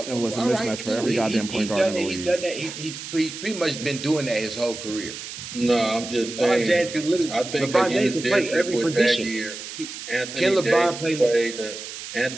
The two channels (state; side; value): noise; right; hiss, 10 dB below the sound